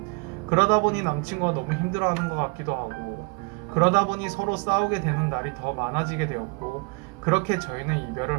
그러다 보니 남친구가 너무 힘들어하는 것 같기도 하고 그러다 보니 서로 싸우게 되는 날이 더 많아지게 되었고 그렇게 저희는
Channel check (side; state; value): left; quieter; 33.1 dB